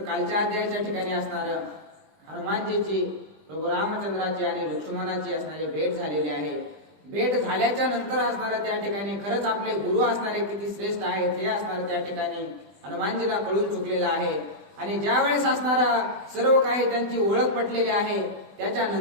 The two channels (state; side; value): late; left; 20 ms